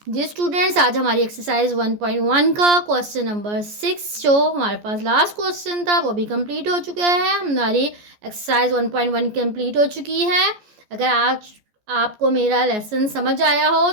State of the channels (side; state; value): left; late; 14 ms